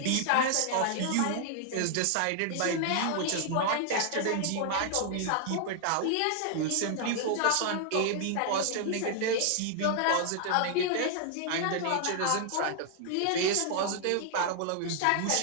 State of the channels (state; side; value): different; both; correlation 0.00